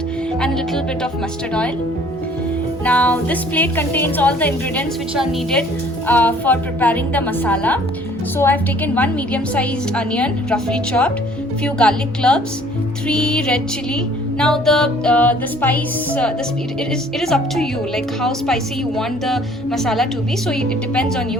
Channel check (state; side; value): normal; both; correlation 0.56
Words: and a little bit of mustard oil. Now this plate contains all the ingredients which are needed for preparing the masala. So I have taken one medium-sized onion, roughly chopped, few garlic cloves, 3 red chili. Now the spice, it is up to you, like how spicy you want the masala to be. So it depends on